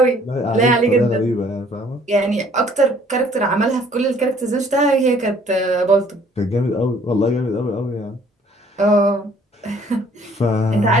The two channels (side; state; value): both; normal; correlation 0.58